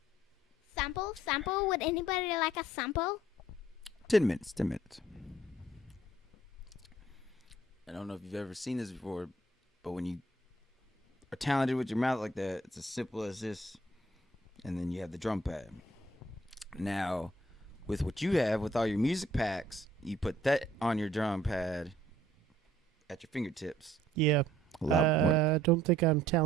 Sample? Sample? Would anybody like a sample? 10 minutes. 10 minutes. I don't know if you've ever seen this before, but when you are talented with your mouth like that, it's as simple as this. And then you have the drum pad. Now, with what you have, with all your music packs, you put that on your drum pad at your fingertips. Yeah. A lot more. I don't think I'm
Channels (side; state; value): both; normal; correlation 0.59